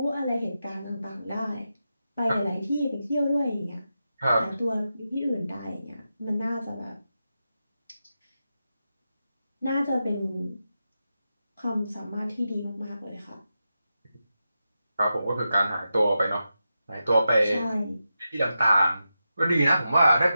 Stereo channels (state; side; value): inverted; both; correlation -0.89